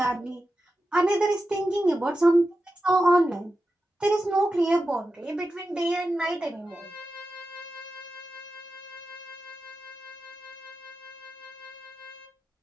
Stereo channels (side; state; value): both; normal; correlation 0.91